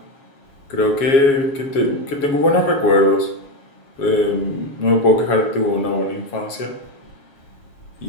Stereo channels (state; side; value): late; right; 7.3 ms